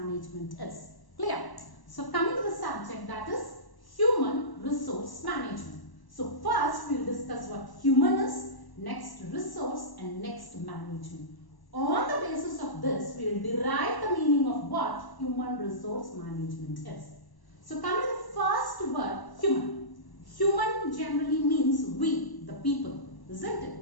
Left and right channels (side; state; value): right; late; 1.0 ms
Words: is. Clear? So coming to the subject, that is human resource management. So first we will discuss what human is, next resource, and next management. On the basis of this, we will derive the meaning of what human resource management is. So coming to the first word, human. Human generally means we, the people, isn't